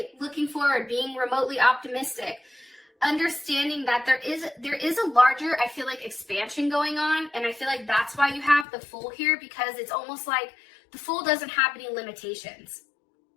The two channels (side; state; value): right; drops out; at 8.7 s